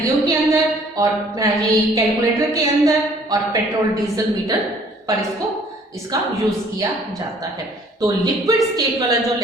के अंदर और ये कैलकुलेटर के अंदर और पेट्रोल डीजल मीटर पर इसका यूज किया जाता है। तो लिक्विड स्टेट वाला जो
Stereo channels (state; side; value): normal; both; correlation 0.58